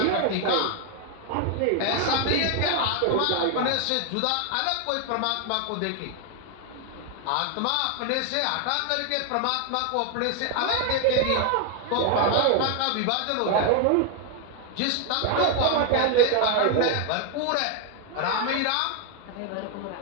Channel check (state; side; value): different; both; correlation 0.00